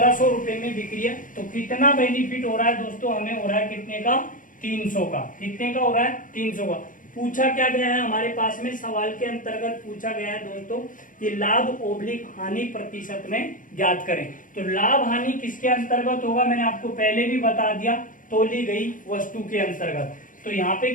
रुपए में बिक रही है। तो कितना बेनिफिट हो रहा है दोस्तों, हमें हो रहा है कितने का, 300 का। कितने का हो रहा है, 300 का। पूछा क्या गया है हमारे पास में, सवाल के अंतर्गत पूछा गया है दोस्तों कि लाभ ओब्लिक हानि प्रतिशत में ज्ञात करें। तो लाभ हानि किसके अंतर्गत होगा, मैंने आपको पहले भी बता दिया, तोली गई वस्तु के अंतर्गत। तो यहाँ पे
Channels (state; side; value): late; right; 0.38 ms